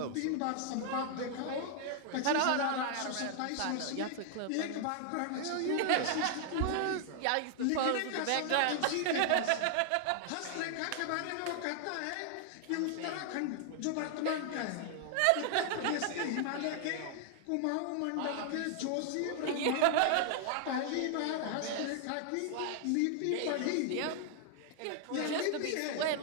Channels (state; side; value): different; both; correlation 0.00